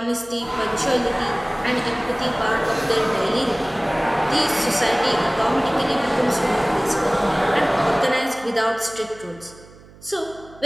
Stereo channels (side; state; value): right; noise; hum, 23 dB below the sound